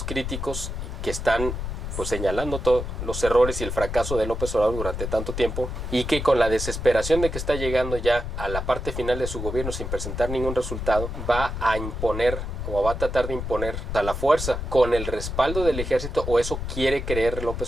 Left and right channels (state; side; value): noise; left; rumble, 5 dB below the sound